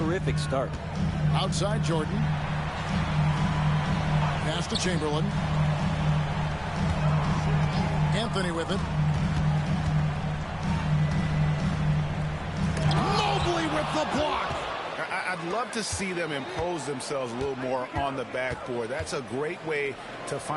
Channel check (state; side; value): identical; both; correlation 1.00